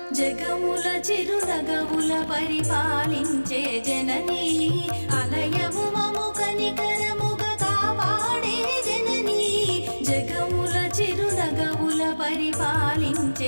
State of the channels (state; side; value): inverted; both; correlation -1.00